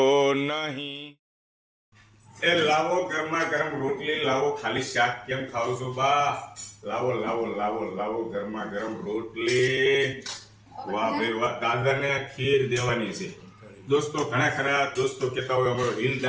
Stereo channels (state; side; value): identical; both; correlation 1.00